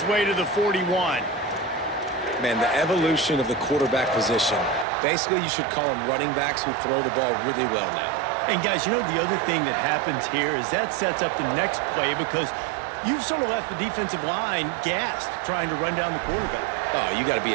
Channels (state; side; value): drops out; left; at 4.9 s